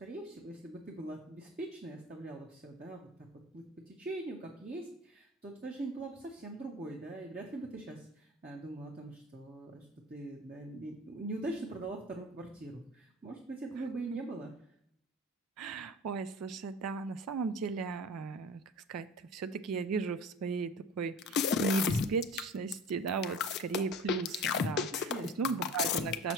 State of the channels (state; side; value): normal; both; correlation 0.38